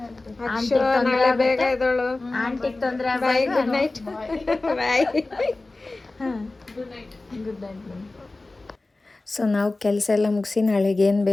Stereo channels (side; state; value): right; quieter; 3.1 dB